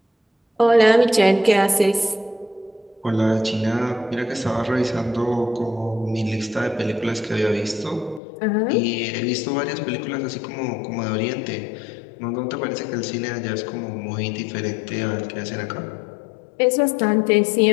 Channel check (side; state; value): right; drops out; at 8.2 s